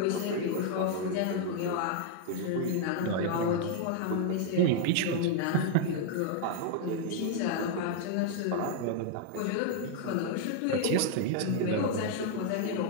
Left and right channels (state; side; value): different; both; correlation 0.00